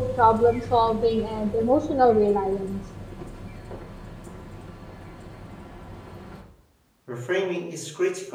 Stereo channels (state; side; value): identical; both; correlation 1.00